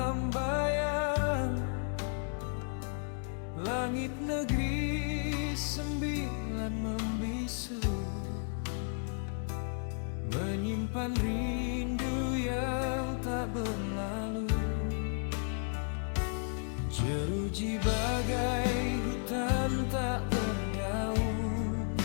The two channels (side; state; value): right; silent; 55 dB below the other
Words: bayang. Langit negeri sembilan membisu, menyimpan rindu yang tak berlalu. Jeruji bagai hutan tak berdaun,